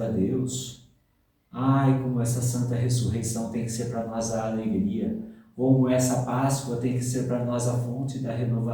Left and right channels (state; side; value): identical; both; correlation 1.00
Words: a Deus. Ai, como essa santa ressurreição tem que ser para nós a alegria, como essa Páscoa tem que ser para nós a fonte da